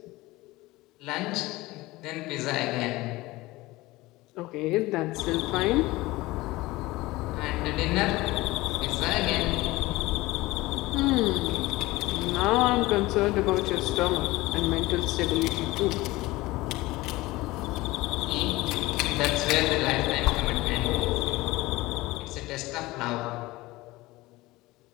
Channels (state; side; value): quieter; right; 19.8 dB